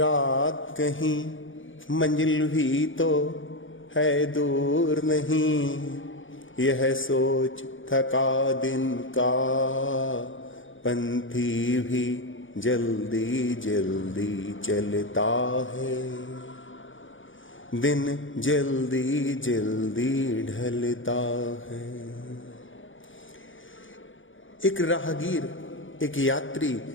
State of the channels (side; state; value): right; late; 0.57 ms